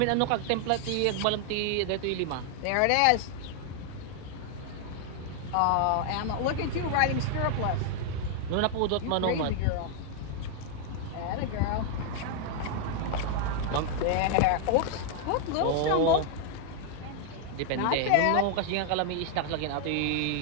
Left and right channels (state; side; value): different; both; correlation 0.00